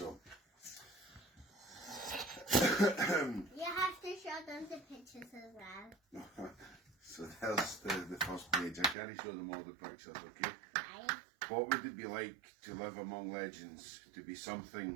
You have to show them the pictures as well. So there's the first page. I can't show them all the pictures, okay? Right. What would it be like to live among legends, to be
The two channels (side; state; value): left; drops out; at 9.0 s